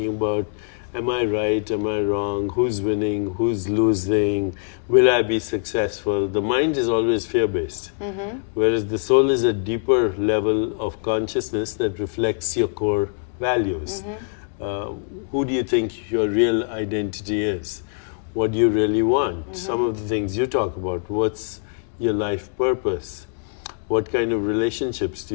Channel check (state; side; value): silent; right; 63 dB below the other